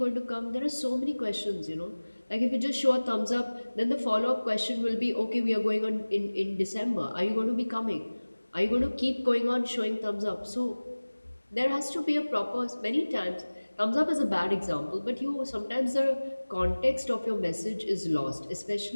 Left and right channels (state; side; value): inverted; both; correlation -1.00